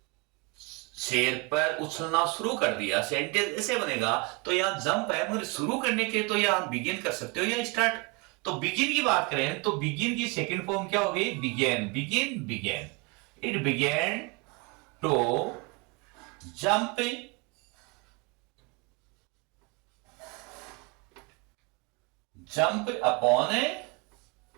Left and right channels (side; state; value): left; quieter; 27.9 dB